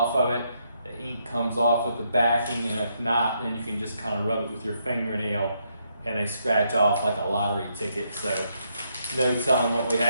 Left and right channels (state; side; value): inverted; both; correlation -0.77